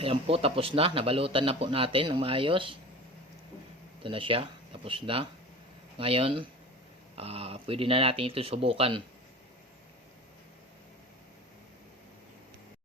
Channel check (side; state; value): both; normal; correlation 0.36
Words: po, tapos na. Nabalutan na po natin ng maayos. Ito na siya. Tapos na. Ngayon, pwede na natin ito subukan.